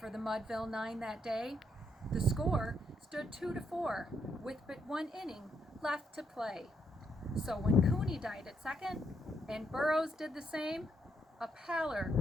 the Mudville Nine that day. The score stood 2-4 with but one inning left to play. So when Cooney died at second and Burroughs did the same, a pallor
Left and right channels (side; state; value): both; normal; correlation 0.76